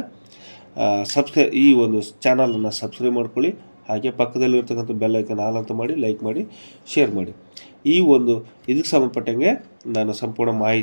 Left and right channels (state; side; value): inverted; both; correlation -1.00